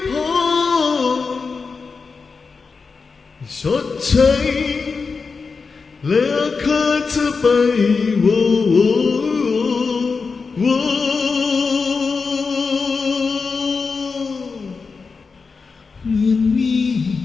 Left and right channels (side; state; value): right; quieter; 4.8 dB